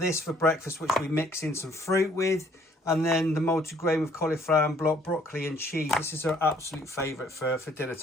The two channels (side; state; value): both; normal; correlation 0.62